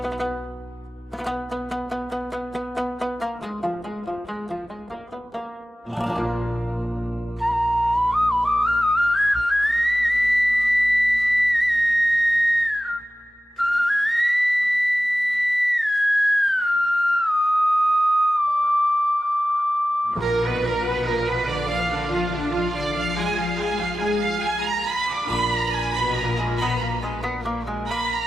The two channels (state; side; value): normal; both; correlation 0.93